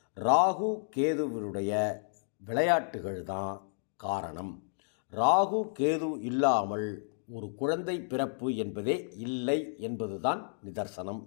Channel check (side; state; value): right; silent; digital silence